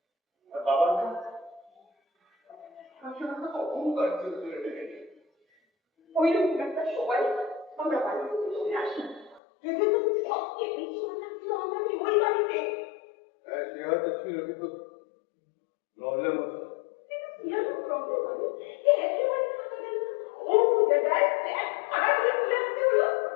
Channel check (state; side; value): drops out; right; at 9.4 s